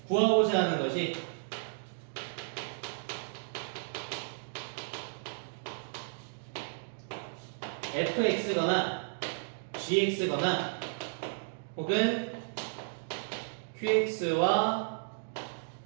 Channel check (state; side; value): silent; left; digital silence